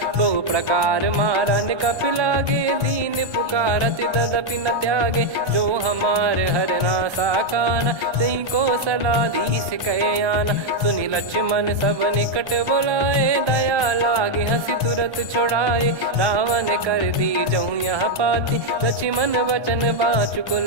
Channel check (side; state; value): left; late; 1.3 ms